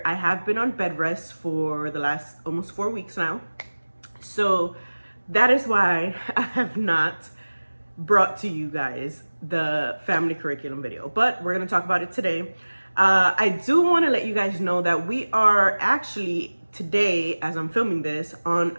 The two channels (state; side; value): inverted; both; correlation -1.00